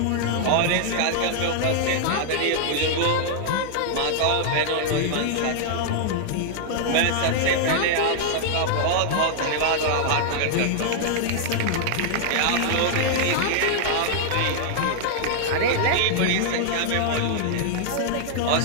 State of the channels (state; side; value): different; both; correlation -0.01